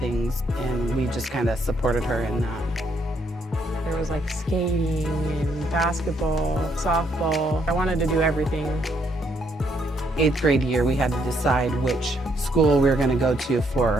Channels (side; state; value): both; normal; correlation 0.72